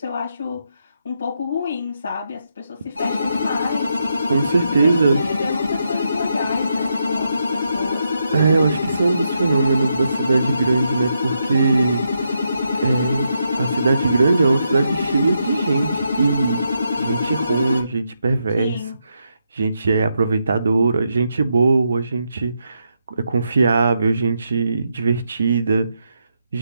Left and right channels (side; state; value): both; inverted; correlation -0.82